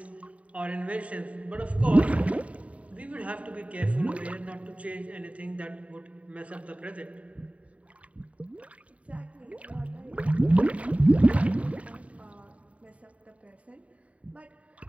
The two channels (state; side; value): late; left; 0.066 ms